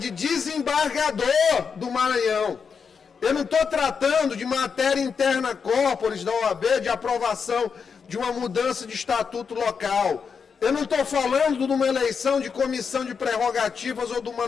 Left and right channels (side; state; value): right; quieter; 6.0 dB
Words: desembargador do Maranhão. Eu não estou tratando de matéria interna corporis da OAB, de aprovação de uma mudança de estatuto local. Eu não estou falando de uma eleição de comissão de prerrogativas ou de uma